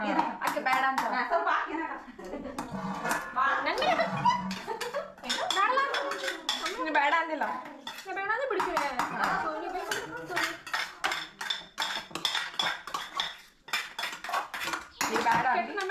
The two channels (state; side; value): identical; both; correlation 1.00